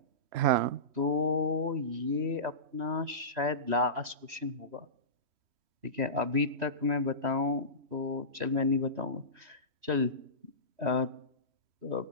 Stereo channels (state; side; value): late; left; 3.1 ms